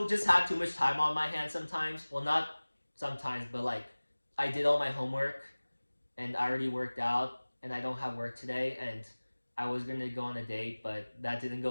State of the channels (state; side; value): inverted; both; correlation -1.00